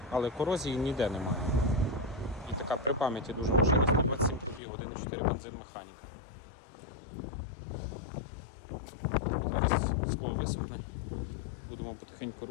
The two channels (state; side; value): drops out; right; at 4.6 s